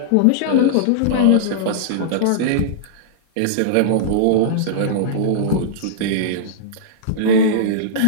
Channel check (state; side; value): different; both; correlation -0.02